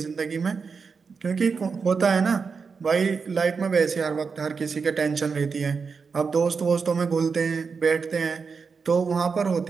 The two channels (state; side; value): quieter; left; 5.3 dB